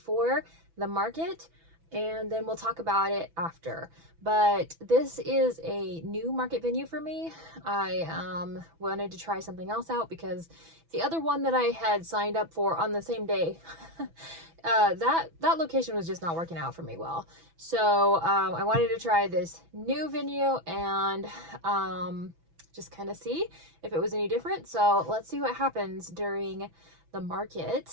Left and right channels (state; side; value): late; left; 6.1 ms